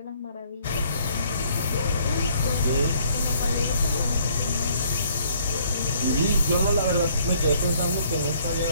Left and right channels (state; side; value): inverted; both; correlation -0.63